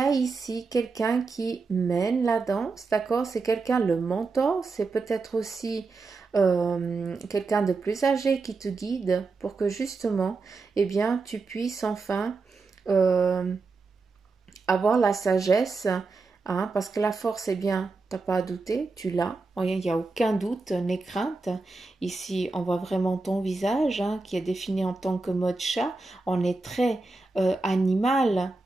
ici quelqu'un qui mène la danse, d'accord? C'est quelqu'un, le mentor, c'est peut-être aussi quelqu'un de plus âgé qui te guide pour que justement, eh bien, tu puisses enfin avoir la sagesse, hein, parce que la force, eh bien, t'as pas à douter, tu l'as, il n'y a aucun doute, n'aie crainte. Ici, on voit vraiment ton visage, hein, qui est défini en tant que mode chat. On est très animal,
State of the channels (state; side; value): quieter; left; 3.9 dB